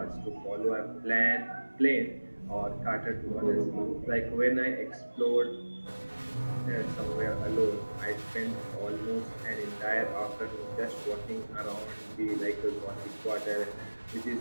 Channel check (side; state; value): both; inverted; correlation -1.00